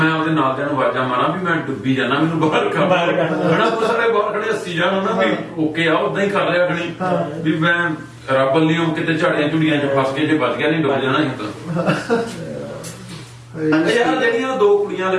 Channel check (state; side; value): identical; both; correlation 1.00